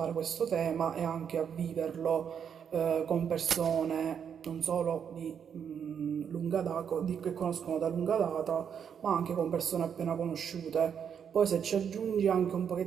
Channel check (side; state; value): left; quieter; 7.8 dB